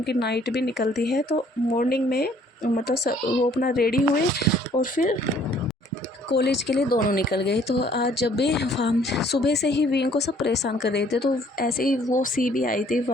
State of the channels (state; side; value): normal; both; correlation 0.60